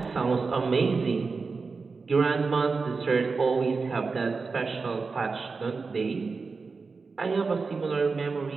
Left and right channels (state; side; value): quieter; left; 4.5 dB